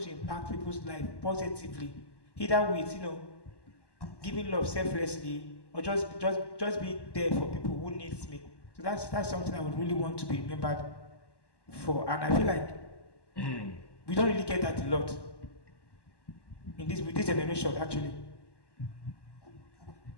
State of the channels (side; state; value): right; late; 1.1 ms